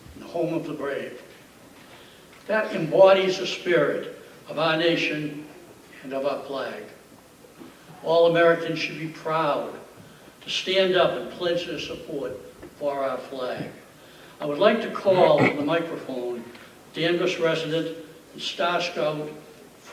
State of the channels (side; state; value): both; identical; correlation 1.00